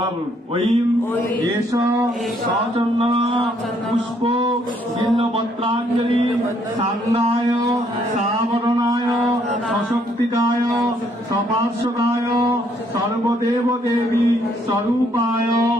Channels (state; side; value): normal; both; correlation 0.69